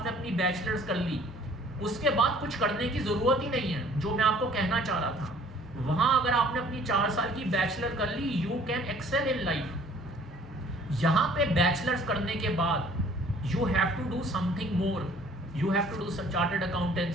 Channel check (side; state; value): both; normal; correlation 0.55